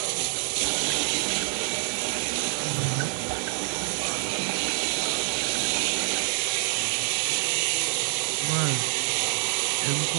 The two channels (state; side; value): silent; left; digital silence